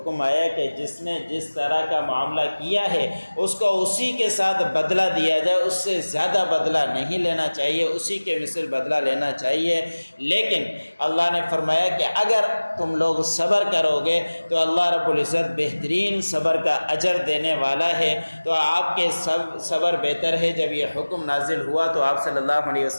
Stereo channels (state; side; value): inverted; both; correlation -1.00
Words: آیا کہ جس نے جس طرح کا معاملہ معاملہ کیا ہے اس کو اسی کے ساتھ بدلہ دیا جائے، اس سے زیادہ بدلہ نہیں لینا چاہیے، اسی کے مثل بدلہ لینا چاہیے۔ لیکن اللہ نے فرمایا کہ اگر تم لوگ صبر کرو گے تو اللہ رب العزت بہترین صبر کا اجر دینے والا ہے۔ تو آپ کے صبر بہتر ہے۔ جب یہ حکم نازل ہوا تو آپ صلی اللہ علیہ